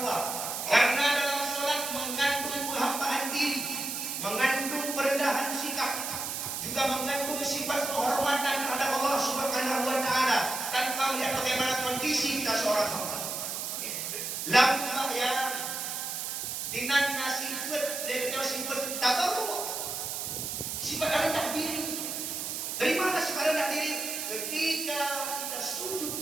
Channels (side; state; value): right; noise; hiss, 4 dB below the sound